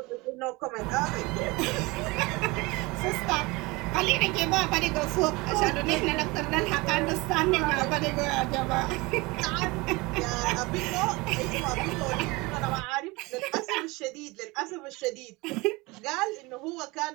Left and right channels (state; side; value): quieter; left; 23.8 dB